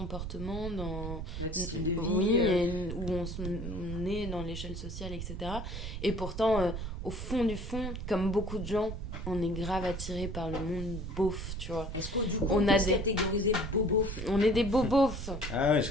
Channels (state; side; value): noise; right; rumble, 6 dB below the sound